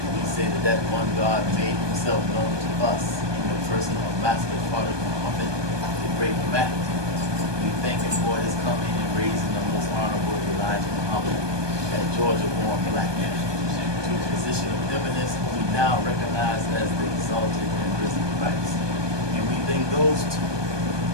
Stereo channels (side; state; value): left; late; 1.2 ms